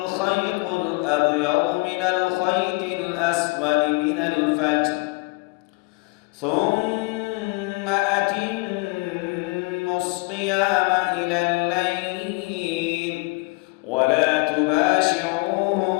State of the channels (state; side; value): quieter; right; 27.8 dB